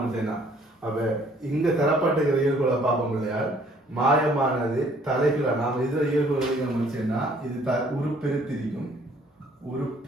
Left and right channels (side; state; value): both; normal; correlation 0.60